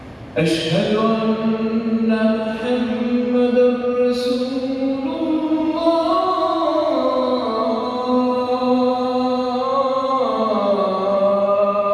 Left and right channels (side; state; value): both; identical; correlation 1.00